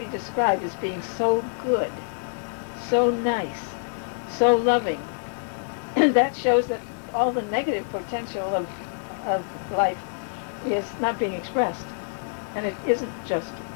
described as being so good, so nice, so loving, that shows that all the negative potential of life is not being expressed, and it isn't just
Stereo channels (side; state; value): right; silent; 59 dB below the other